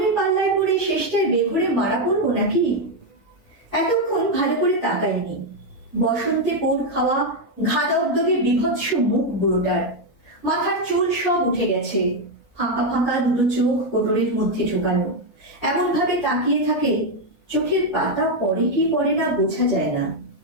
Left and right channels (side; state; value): right; late; 1.7 ms